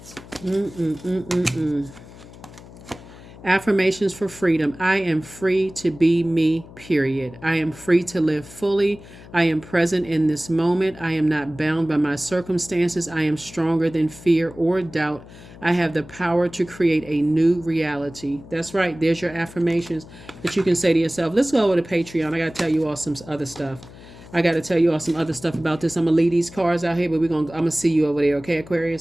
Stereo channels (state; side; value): noise; left; hum, 19 dB below the sound